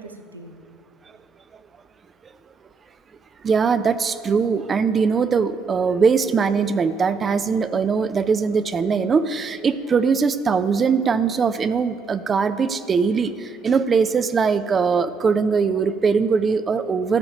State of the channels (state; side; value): quieter; left; 5.2 dB